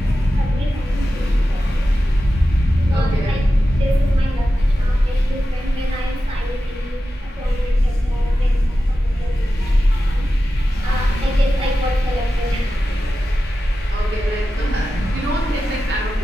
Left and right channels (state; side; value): normal; both; correlation 0.92